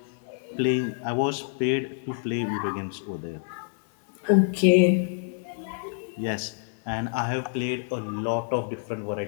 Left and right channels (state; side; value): silent; right; digital silence